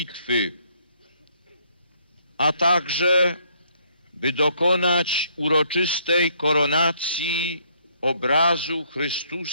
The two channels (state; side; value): inverted; both; correlation -0.68